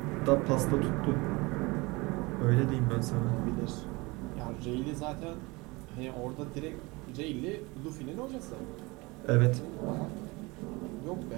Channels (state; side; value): quieter; left; 24.4 dB